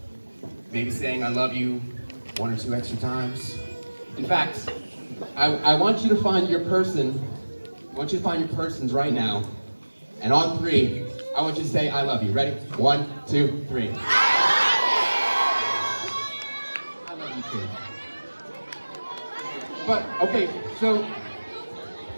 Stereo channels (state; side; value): inverted; both; correlation -1.00